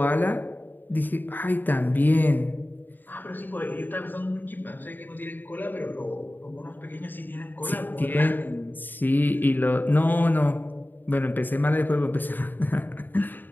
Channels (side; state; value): right; late; 0.090 ms